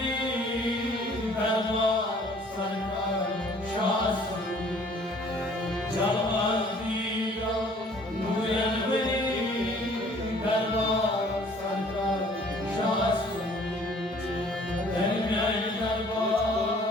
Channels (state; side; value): normal; both; correlation 0.55